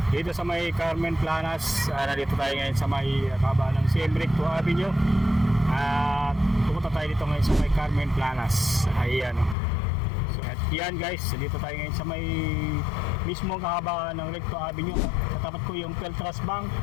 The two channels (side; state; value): right; drops out; at 9.6 s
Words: dito sa may Carmen Planas. Nandito tayo ngayon sa may kaba ng Siem Reap Avenue. At pumunta tayo dito ngayon sa may Carmen Planas. Ayan. So at yan guys, dito tayo ngayon sa may mismo kahaba ng Recto Avenue. Katapat ko yung Peltras Bank,